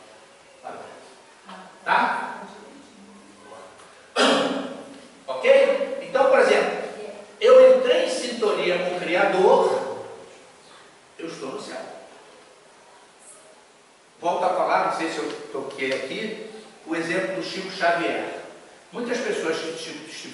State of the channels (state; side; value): identical; both; correlation 1.00